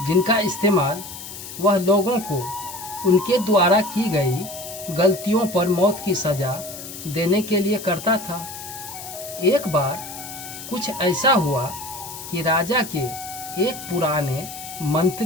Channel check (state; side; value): noise; left; hiss, 11 dB below the sound